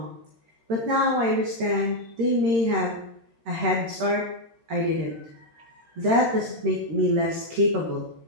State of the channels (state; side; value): late; left; 13 ms